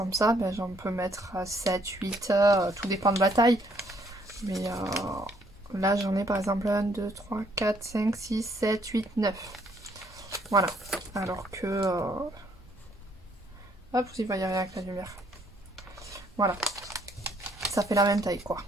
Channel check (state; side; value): normal; both; correlation 0.67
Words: ça, ben, j'en peux mettre 7, 8, tout dépend de la taille. Mais là j'en ai par exemple 1, 2, 3, 4, 5, 6, 7, 8, 9. Voilà. Alors que... hop, vous y voyez rien avec la lumière. Voilà. Ça fait la même taille quoi.